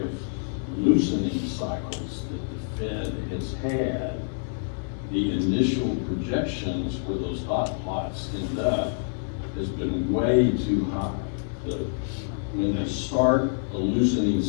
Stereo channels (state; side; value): silent; right; digital silence